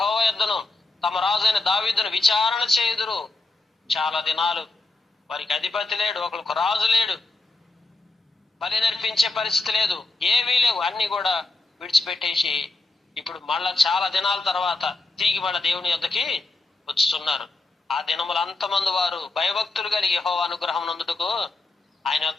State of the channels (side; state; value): right; quieter; 3.3 dB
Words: యొద్దను, తమ రాజైన దావీదును విచారణ చేయుదురు. చాలా దినాలు వారికి అధిపతి లేడు, ఒకరికి రాజు లేడు, బలి నర్పించే పరిస్థితి లేదు, ఏవీ లేవు. అన్ని కూడా విడిచిపెట్టేసి ఇప్పుడు మళ్ళా చాలా దినాల తర్వాత తిరిగి మళ్ళా దేవుని యొద్దకి వచ్చుతున్నారు. ఆ దినములు అంతమంది వారు భయభక్తులు కలిగి యెహోవా అనుగ్రహం నందుటకు ఆయన